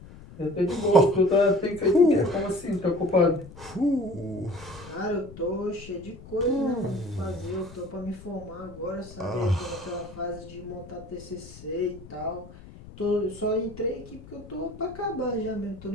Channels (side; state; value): left; noise; rumble, 17 dB below the sound